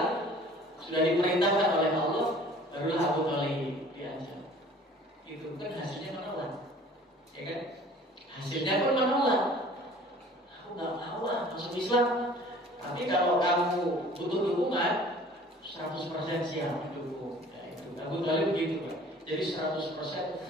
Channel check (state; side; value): normal; both; correlation 0.49